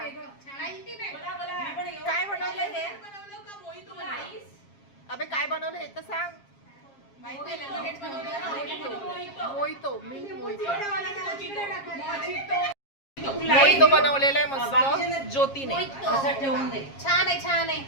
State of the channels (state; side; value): late; right; 7.4 ms